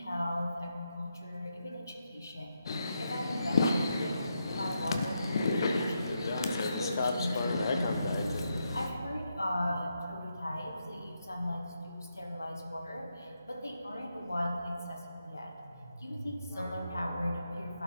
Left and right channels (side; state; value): both; inverted; correlation -0.83